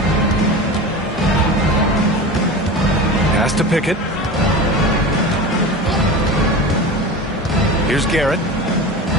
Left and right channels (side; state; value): both; normal; correlation 0.30